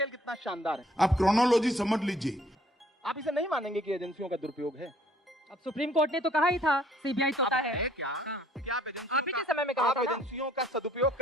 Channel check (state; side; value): normal; both; correlation 0.60